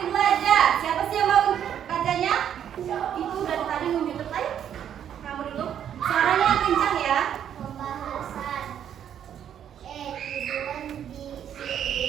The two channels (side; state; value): left; quieter; 9.5 dB